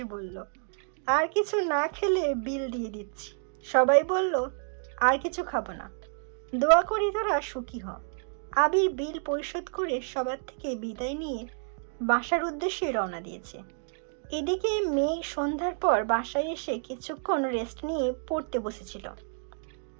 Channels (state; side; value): silent; left; 58 dB below the other